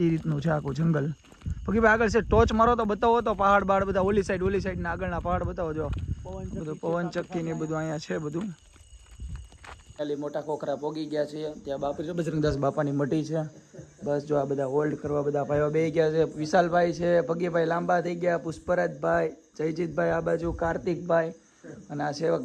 એ રીતનું છે આખું જંગલ. બાકી ભાઈ આગળ છે ટોચ મારો તો બતાવો તો પહાડ બાડ બધા ઓલી સાઈડ ના આગળના પહાડ બતાવો. જો બધું પવન ચક્કી ને બધું અહીંયા છે બધું. ખાલી મોટા કોખરા પોગી ગયા છે. ત્યાં બાપુ બજરંગદાસ બાપાની મઢી છે. બસ જો આ બધા હોલ્ડ કરવા બધા ભાઈઓ બે ગયા છે. વિશાલભાઈ છે, પગીભાઈ લાંબા થઈ ગયા, પુષ્પરાજભાઈ, જયજીતભાઈ આ બાજુ, કાર્તિકભાઈ અને આ સેવક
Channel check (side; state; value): both; identical; correlation 1.00